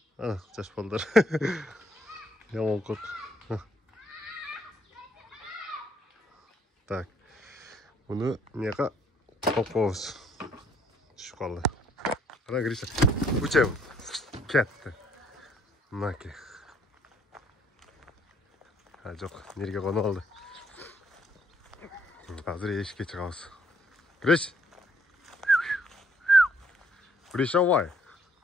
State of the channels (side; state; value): both; normal; correlation 0.66